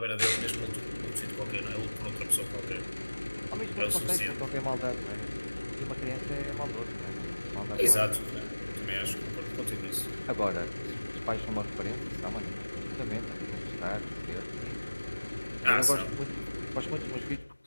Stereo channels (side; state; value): both; inverted; correlation -1.00